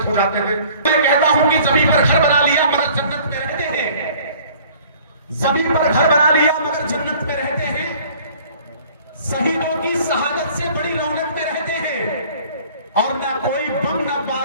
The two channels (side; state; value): both; inverted; correlation -0.52